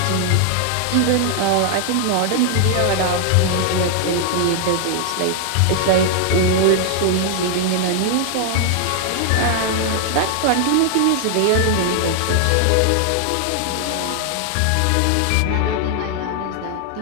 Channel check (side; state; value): both; different; correlation 0.00